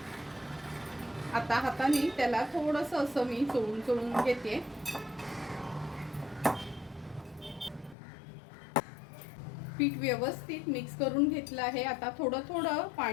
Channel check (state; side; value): drops out; right; at 8.0 s